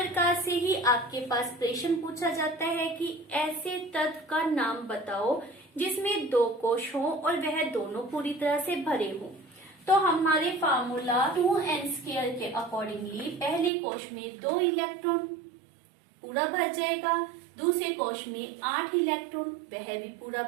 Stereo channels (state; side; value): drops out; left; at 13.7 s